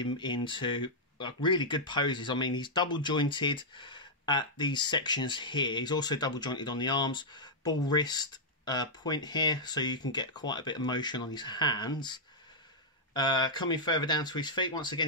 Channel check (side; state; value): both; normal; correlation -0.07